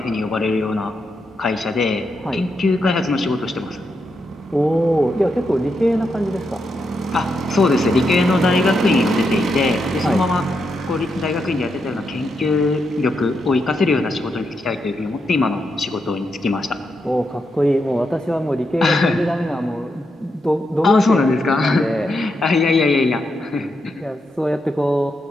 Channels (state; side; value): normal; both; correlation 0.83